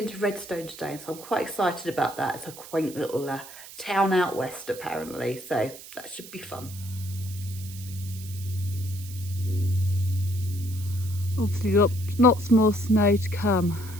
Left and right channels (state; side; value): noise; right; hiss, 16 dB below the sound